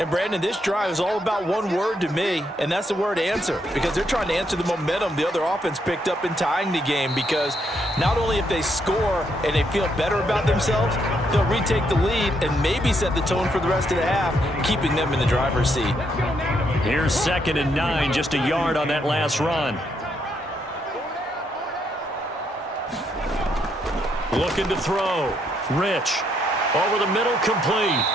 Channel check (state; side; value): normal; both; correlation 0.75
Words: Brandon, this drive is all about one word to me, and that's the word answer, because they're trying to answer the momentum the other offense picked up in tying the game, because not only if they score and they feel better about themselves, they'll retake the lead and maybe set the tone for the rest of the half, keeping them in the driver's seat. Here's 2nd and 9, just a yard on that last run. Looking to throw. Rich. Over the middle, complete.